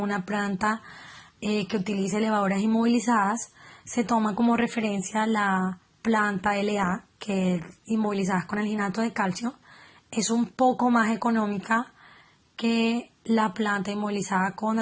planta que utilice levaduras inmovilizadas, se toma como referencia la planta LA, que es inmovilizadas con alginato de calcio. Es un poco más económica que la planta inmovilizada con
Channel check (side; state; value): both; identical; correlation 1.00